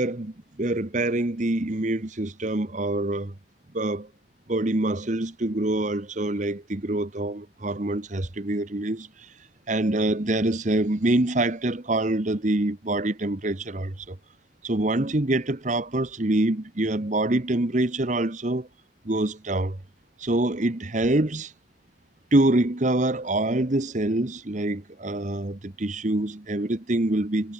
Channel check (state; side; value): normal; both; correlation 0.58